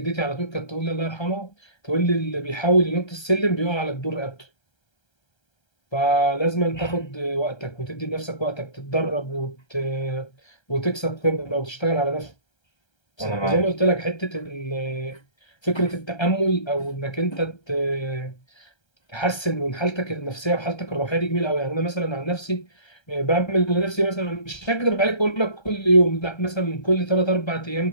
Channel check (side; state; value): right; late; 1.3 ms